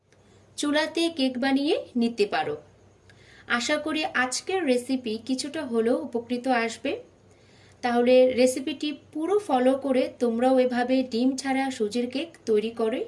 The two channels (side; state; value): both; identical; correlation 1.00